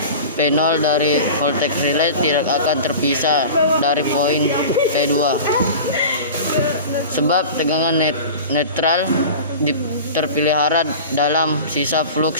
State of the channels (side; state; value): both; inverted; correlation -0.35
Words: P0 dari voltage relay tidak akan terpisah dari poin P2, sebab tegangan netral terpelihara dalam sisa